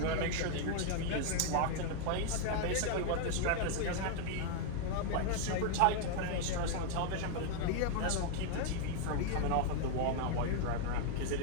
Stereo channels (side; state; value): both; different; correlation 0.00